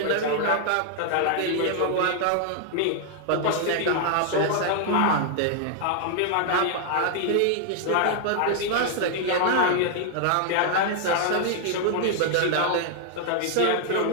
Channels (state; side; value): different; both; correlation 0.00